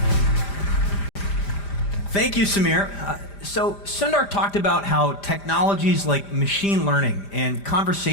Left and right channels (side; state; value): right; late; 5.0 ms